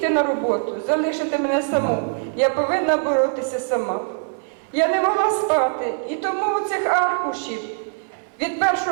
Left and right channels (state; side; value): silent; left; 64 dB below the other